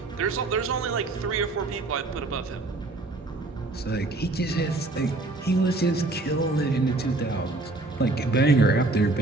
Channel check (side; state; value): left; quieter; 3.1 dB